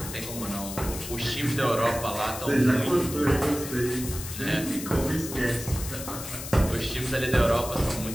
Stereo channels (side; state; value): left; noise; hiss, 9 dB below the sound